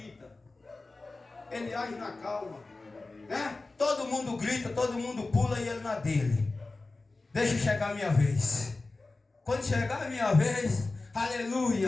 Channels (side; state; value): right; quieter; 3.4 dB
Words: Ele age na calma. Né? Todo mundo grita, todo mundo pula e ele na dele. Deixa chegar a minha vez. Quando chegar a minha vez,